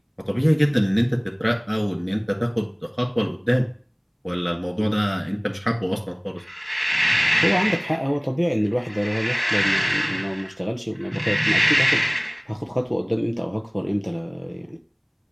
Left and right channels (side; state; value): both; identical; correlation 1.00